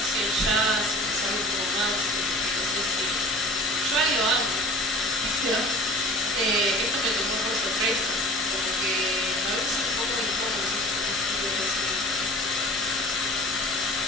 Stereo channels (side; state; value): left; noise; hum, 27 dB below the sound